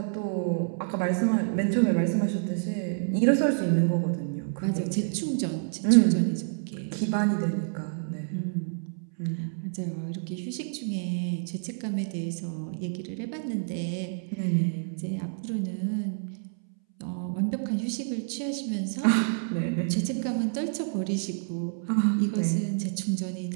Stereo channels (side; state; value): left; silent; 59 dB below the other